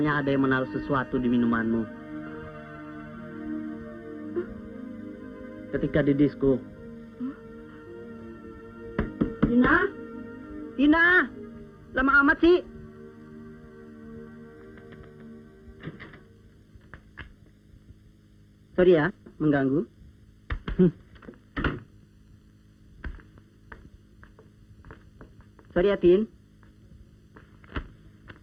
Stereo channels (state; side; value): identical; both; correlation 1.00